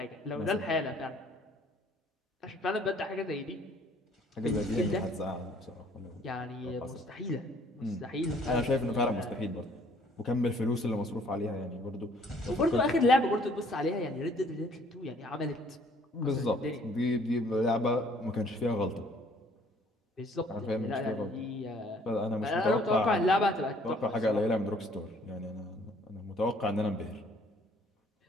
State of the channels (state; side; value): normal; both; correlation 0.60